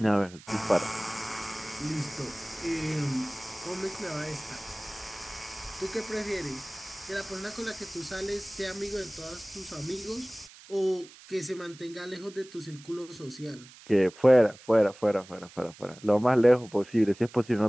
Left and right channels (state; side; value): noise; right; hiss, 21 dB below the sound